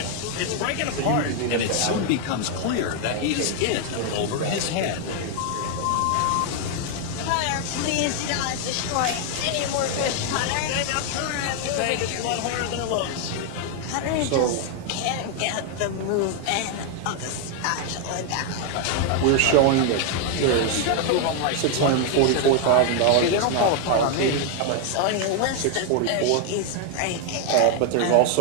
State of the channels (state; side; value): different; both; correlation 0.00